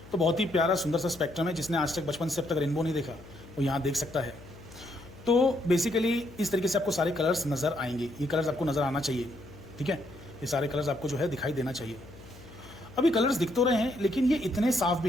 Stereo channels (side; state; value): left; noise; hum, 20 dB below the sound